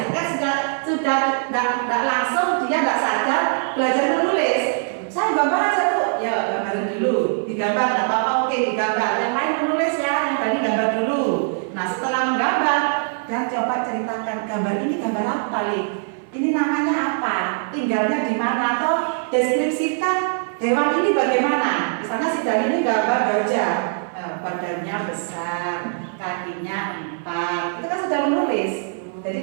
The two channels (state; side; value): silent; left; 58 dB below the other